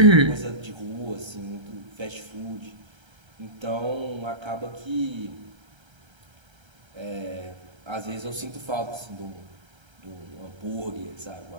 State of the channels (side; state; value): left; late; 1.3 ms